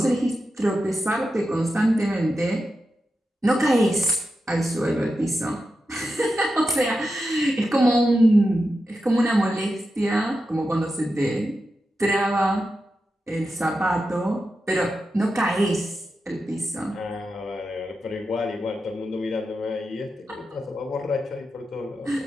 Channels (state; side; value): normal; both; correlation 0.90